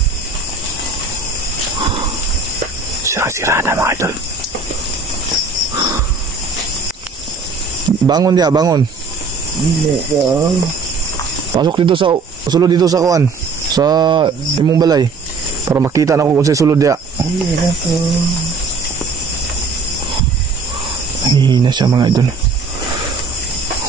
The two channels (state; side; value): quieter; left; 4.4 dB